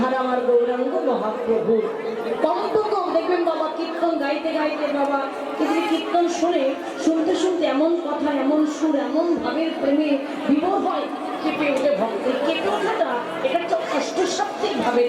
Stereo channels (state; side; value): identical; both; correlation 1.00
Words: আমার গৌরাঙ্গ মহাপ্রভু কম্পক দেখবেন বাবা কীর্তন গাইতে গাইতে বাবা কিন্তু কীর্তন শুনে শুনতে শুনতে এমন কথা এমন সুর এমন ভাবের প্রেমে বিভোর হয় কেঁপে ওঠে ভক্তি কেঁপে ওঠাটা এটা হচ্ছে অষ্টসাত্ত্বিক ভাবের